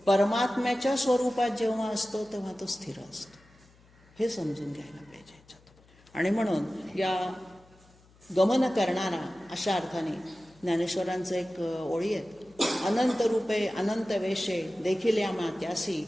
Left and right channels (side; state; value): left; noise; hum, 28 dB below the sound